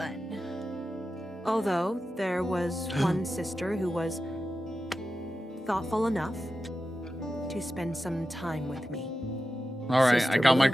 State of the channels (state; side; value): normal; both; correlation 0.92